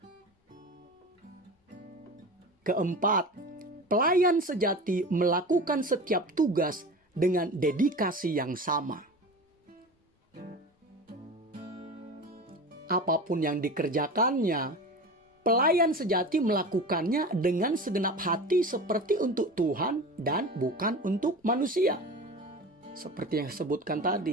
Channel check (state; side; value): normal; both; correlation 0.32